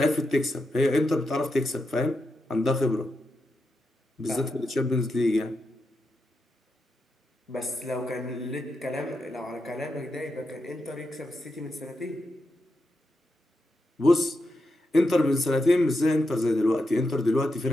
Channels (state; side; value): normal; both; correlation 0.86